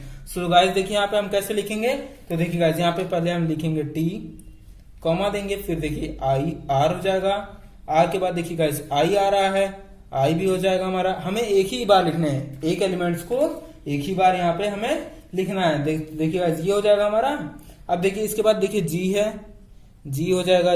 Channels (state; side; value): identical; both; correlation 1.00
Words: सो गाइस देखिए यहाँ पे हम कैसे लिखेंगे, तो देखिए गाइस यहाँ पे पहले हम लिखेंगे टी कॉमा देंगे, फिर देखिए आई आर हो जाएगा, आर के बाद देखिए गाइस आई आ रहा है, आई भी हो जाएगा हमारा। हमें एक ही बार लिखना है, एक एलिमेंट्स को एक ही बार यहाँ पे हमें लिखना है। देखिए गाइस ये हो जाएगा हमारा। अब देखिए इसके बाद देखिए जी है, जी हो जाएगा,